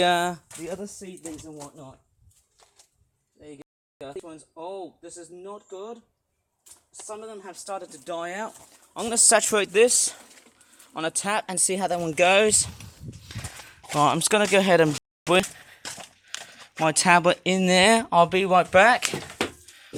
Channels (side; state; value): both; identical; correlation 1.00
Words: other seedlings and whatnot. There you go. These ones, oh, this is not good. Some of them have started to die out. I'm going to saturate this on a tap and see how that one goes. Right, I'm just going to go ahead and put my tablet in there. I'll be right back